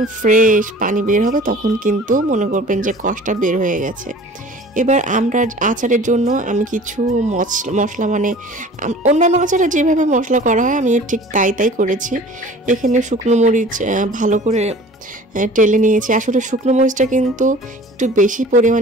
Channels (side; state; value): both; normal; correlation 0.45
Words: ফ্রেশ পানি বের হবে, তখন কিন্তু মনে করবেন যে কষটা বের হয়ে গেছে। এবার আমরা আচারের জন্য আমি কিছু মশলা অন্যান্য আচারে যেভাবে মশলা করা হয় আমি ঠিক তাই করেছি। এখানে শুকনো মরিচ ভালো করে টেলে নিয়েছি। আসলে শুকনো মরিচটা কিন্তু একটু বেশি